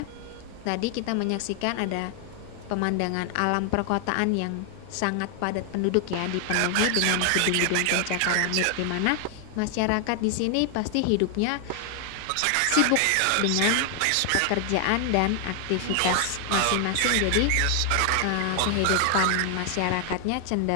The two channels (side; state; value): both; different; correlation 0.00